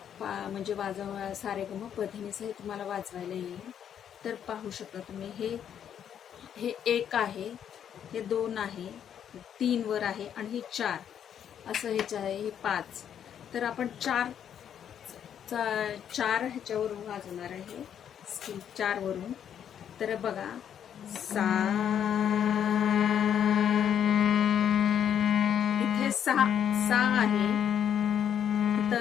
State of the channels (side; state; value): right; quieter; 9.0 dB